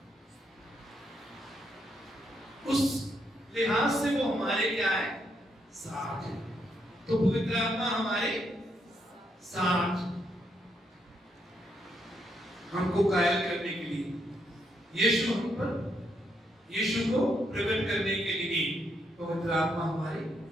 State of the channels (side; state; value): both; normal; correlation 0.77